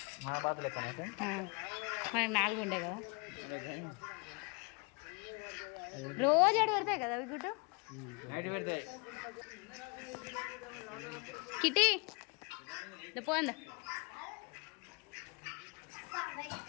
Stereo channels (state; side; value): quieter; right; 32.4 dB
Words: మన బాతులు మనకి 4 ఉండే కదా రోజు అడు పెడతాయి కదా అవి గుడ్డు నైట్ పెడతాయి కిటీ పోందా